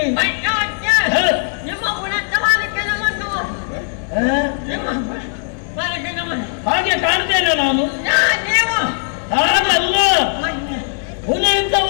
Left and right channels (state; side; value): silent; right; digital silence